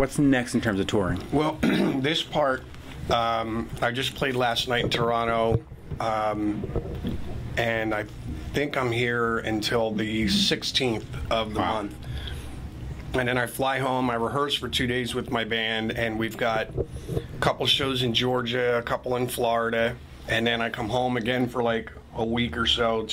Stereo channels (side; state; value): both; identical; correlation 1.00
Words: next in terms of touring? Well, this part, I just played last night in Toronto, and I think I'm here until the 16th of the month. And then I fly home, I rehearse for 2 days with my band, and we've got a couple shows in Georgia, a couple in Florida, and then I come home again for like a week or so,